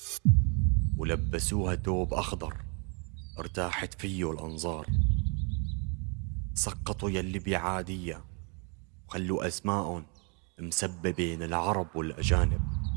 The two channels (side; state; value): left; quieter; 35.0 dB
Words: ولبسوها توب أخضر ارتاحت فيه الأنظار. سقطوا يلي بعادية وخلوا أسماءهم مسببين العرب والأجانب.